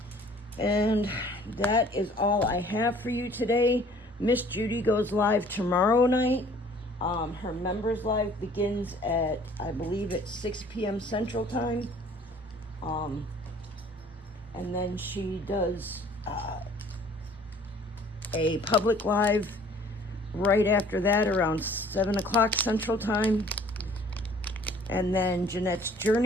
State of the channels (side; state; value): both; normal; correlation 0.54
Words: And that is all I have for you today. Miss Judy goes live tomorrow night. Her members live begins at, I believe, at 6 p.m. Central Time. And then she does a public live right after that around 7 o'clock Central Time. And then Jeanette's